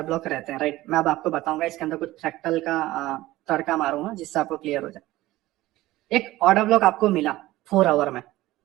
ब्लॉक रहते हैं, राइट? मैं अब आपको बताऊंगा, इसके अंदर कुछ फ्रैक्टल का तड़का मारूंगा जिससे आपको क्लियर हो जाए। एक ऑर्डर ब्लॉक आपको मिला 4 आवर में,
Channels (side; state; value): left; quieter; 17.1 dB